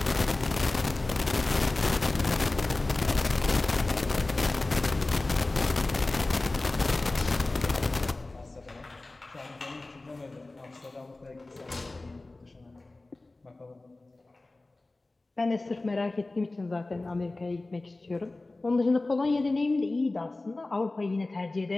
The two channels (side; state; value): right; quieter; 3.1 dB